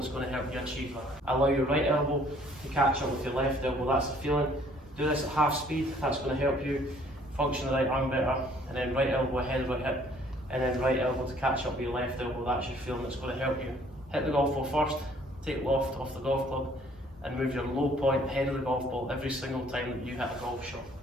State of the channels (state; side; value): normal; both; correlation 0.59